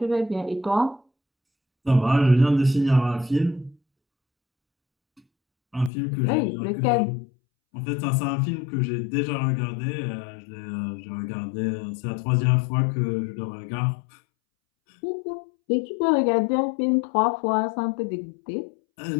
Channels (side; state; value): right; drops out; at 5.9 s